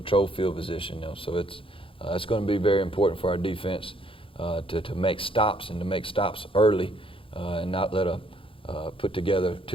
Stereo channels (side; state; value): right; late; 0.26 ms